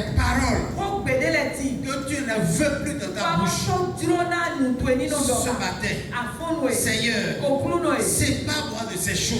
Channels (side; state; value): both; identical; correlation 1.00